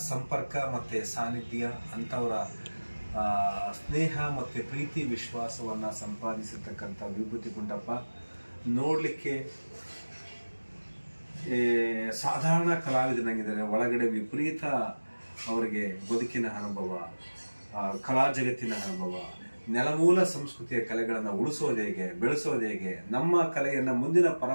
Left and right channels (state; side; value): inverted; both; correlation -1.00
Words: ಸಂಪರ್ಕ ಮತ್ತು ಸಾನ್ನಿಧ್ಯ, ಅಂಥವರ ಸ್ನೇಹ ಮತ್ತು ಪ್ರೀತಿ ವಿಶ್ವಾಸವನ್ನು ಸಂಪಾದಿಸಿರ್ತಕ್ಕಂಥ ವಿಭೂತಿ ಗುಂಡಪ್ಪ ನೋಡಲಿಕ್ಕೆ ಸಾಧಾರಣ ಕಲಾವಿದನಾಗಿದ್ದಾರೆ. ಒಳಗಡೆ ವಿಪರೀತ ಅವರಿಗೆ ಬದುಕಿನ ಅನುಭವ, ಕಲಾ ಜಗತ್ತಿನ ಅನುಭವ, ನೆಲಮೂಲ ಸಂಸ್ಕೃತಿಯ ಕಲೆಗಳನ್ನು ಉಳಿಸೋದು ಹೇಗೆ, ಬೆಳೆಸೋದು ಹೇಗೆ, ನಮ್ಮ ಕಲೆಯನ್ನು ಮುಂದಿನ